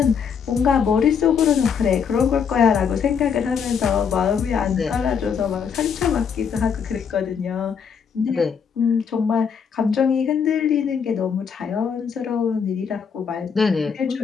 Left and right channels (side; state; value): right; quieter; 6.7 dB